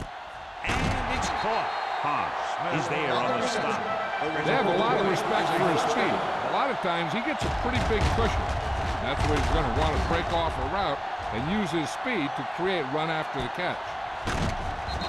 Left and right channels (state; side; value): identical; both; correlation 1.00